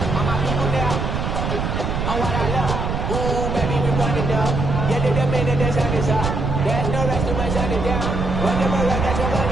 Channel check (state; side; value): noise; right; rumble, 2 dB below the sound